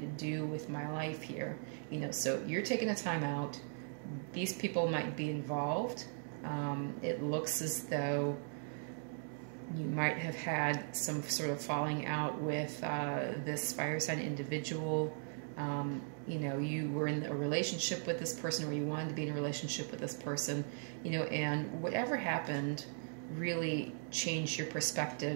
to do with my life here. You know, so you're taking a time out. These people might be involved. It looks as though you might have had some sort of falling out with this fire sign individual. You know, you were in a relationship with this person, or you wanted to be in a relationship with this person, you know, and whatever happened really changed your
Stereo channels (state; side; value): silent; left; 52 dB below the other